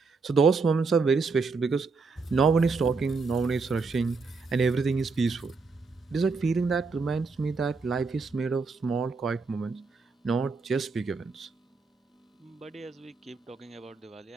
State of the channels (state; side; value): quieter; left; 4.4 dB